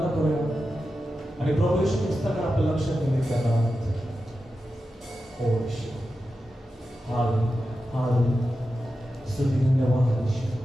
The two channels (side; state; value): both; normal; correlation 0.91